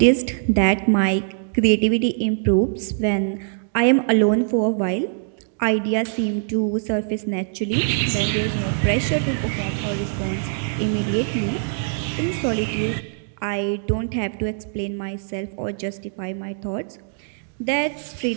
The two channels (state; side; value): silent; left; digital silence